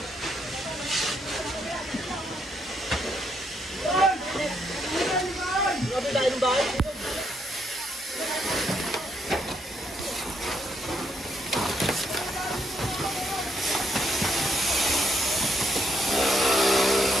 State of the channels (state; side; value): normal; both; correlation 0.76